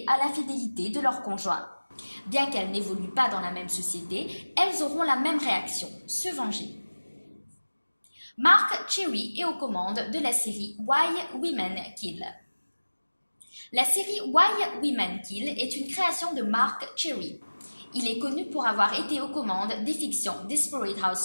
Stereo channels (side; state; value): both; inverted; correlation -1.00